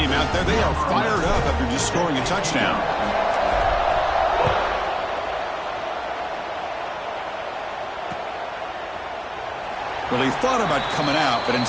out there, they are fired up after just scoring a touchdown. Well, he thought about coming out, but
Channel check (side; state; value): both; identical; correlation 1.00